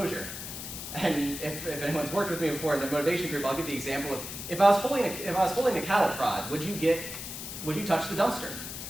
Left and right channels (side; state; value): left; noise; hiss, 8 dB below the sound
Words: And if anyone's worked with me before in the motivation group, I'll give the example of if I was holding a cattle prod, would you touch the dumpster?